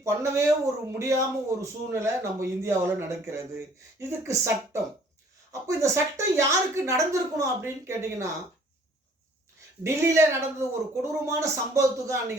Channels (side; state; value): both; normal; correlation 0.57